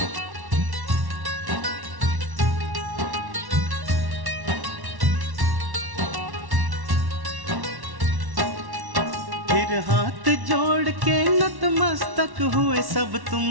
फिर हाथ जोड़ के नतमस्तक हुए सब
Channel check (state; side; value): late; left; 1.1 ms